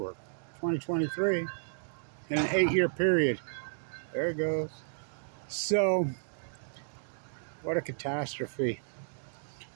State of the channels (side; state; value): left; silent; digital silence